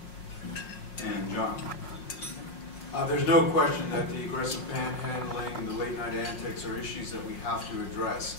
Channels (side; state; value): right; late; 5.5 ms